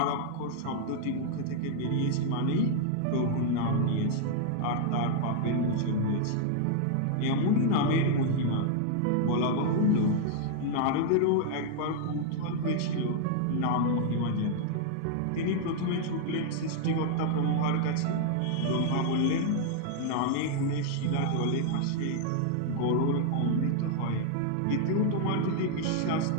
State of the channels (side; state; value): both; different; correlation -0.01